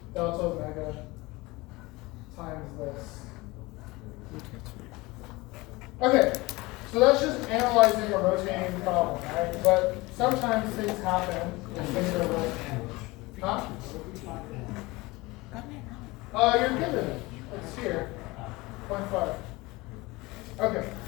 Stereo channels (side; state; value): right; quieter; 22.2 dB